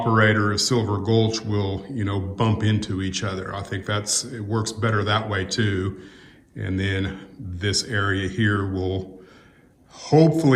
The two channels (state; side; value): identical; both; correlation 1.00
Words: of Silver Gulch will, bump into each other. I think it works better that way too. And then this area here will,